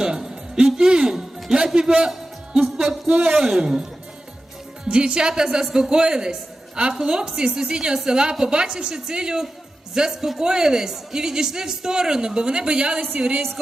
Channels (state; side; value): normal; both; correlation 0.93